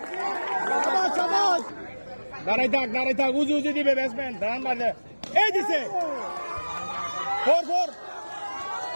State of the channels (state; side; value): inverted; both; correlation -1.00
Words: সবাই দাঁড়াই থাক উজু দিবে ব্যাটসম্যান রান মারলে এই দিছে ফোর